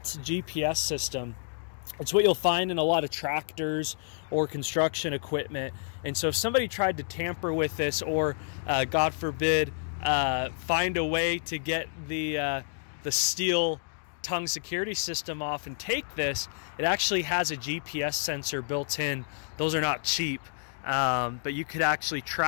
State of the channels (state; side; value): silent; right; digital silence